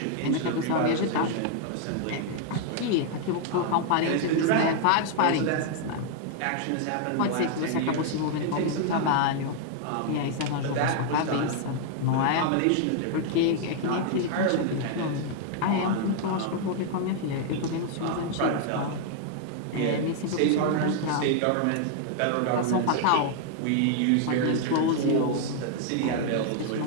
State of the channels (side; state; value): both; different; correlation 0.00